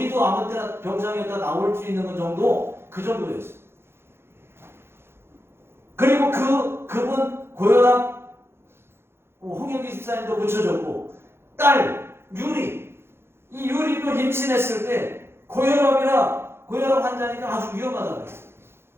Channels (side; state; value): left; late; 0.12 ms